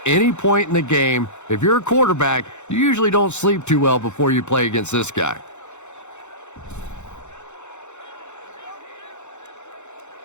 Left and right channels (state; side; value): late; right; 0.83 ms